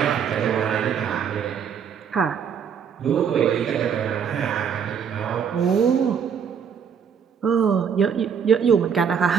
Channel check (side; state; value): left; quieter; 7.3 dB